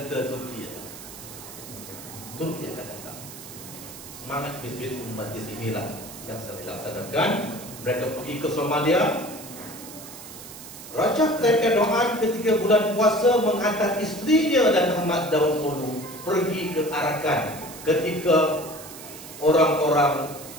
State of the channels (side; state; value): right; noise; hiss, 14 dB below the sound